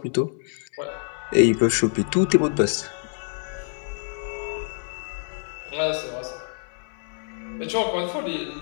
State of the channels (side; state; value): right; silent; 61 dB below the other